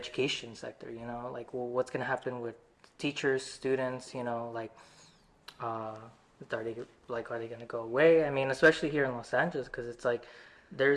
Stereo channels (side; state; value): both; identical; correlation 1.00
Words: sector. Like, well, what's gonna happen with teachers, students? Like, are they gonna go away? I mean, especially here in Los Angeles, because it's like